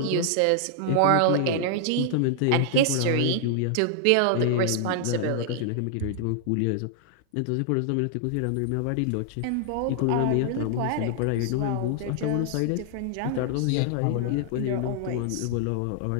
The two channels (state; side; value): different; both; correlation -0.01